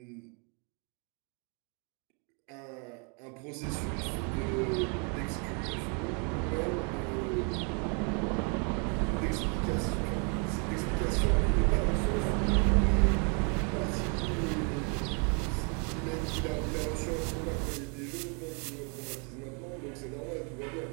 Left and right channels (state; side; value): quieter; left; 37.1 dB